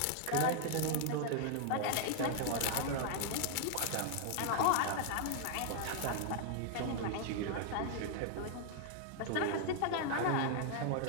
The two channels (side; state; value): both; different; correlation 0.00